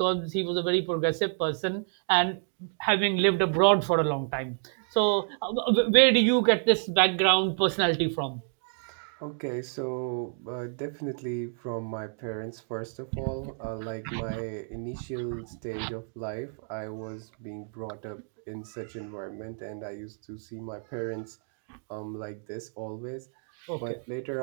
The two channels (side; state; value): left; silent; 58 dB below the other